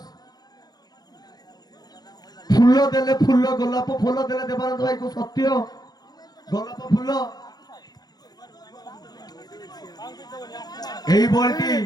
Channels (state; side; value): late; right; 0.19 ms